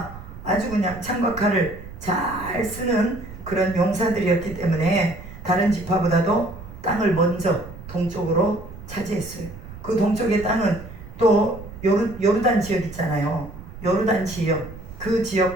아주 그냥 창과 칼을 잘 쓰는 그런 용사들이었기 때문에 다른 지파보다도 땅을 먼저 동쪽으로 차지했어요. 그 동쪽의 땅은 또 요르단 지역 있잖아요. 요르단 지역, 그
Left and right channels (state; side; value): noise; right; rumble, 14 dB below the sound